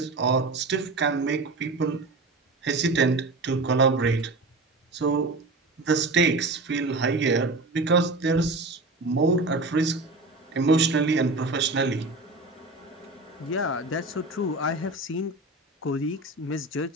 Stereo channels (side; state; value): left; quieter; 3.1 dB